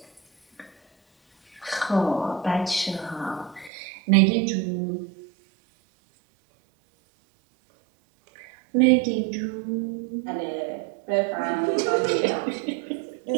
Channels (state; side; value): drops out; left; at 3.7 s